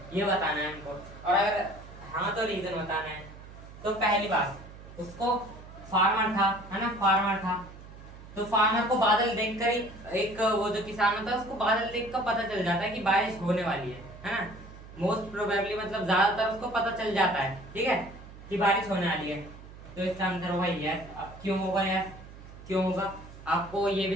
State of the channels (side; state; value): right; noise; hum, 17 dB below the sound